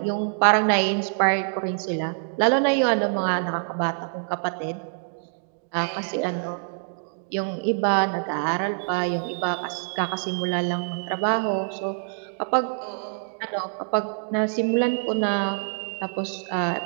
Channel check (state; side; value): silent; left; 60 dB below the other